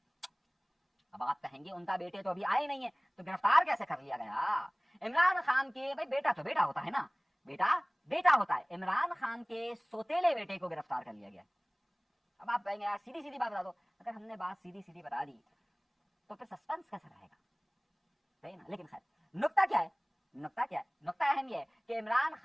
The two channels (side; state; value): both; identical; correlation 1.00